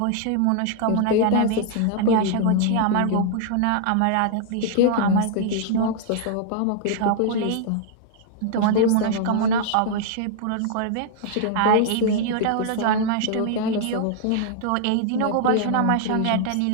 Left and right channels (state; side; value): different; both; correlation -0.01